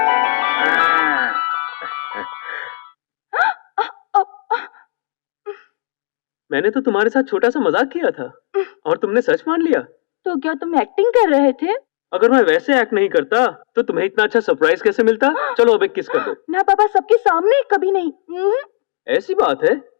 मैंने तो तुम्हारे साथ छोटा सा मजाक किया था और तुमने सच मान लिया। तो क्या तुम एक्टिंग कर रहे थे? अगर मैं वैसे एक्ट नहीं करता तो तुम्हें इतना अच्छा सरप्राइज कैसे मिलता? चलो अब एक किस कर दो। ना पापा, सबके सामने कभी नहीं। ऐसी बात है?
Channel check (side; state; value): right; silent; digital silence